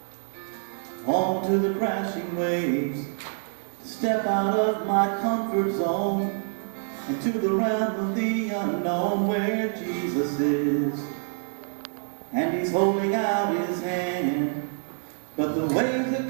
onto the crashing waves, step out of my comfort zone into the realm of the unknown where Jesus is, and he's holding out his hand, but the waves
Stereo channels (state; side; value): silent; left; 61 dB below the other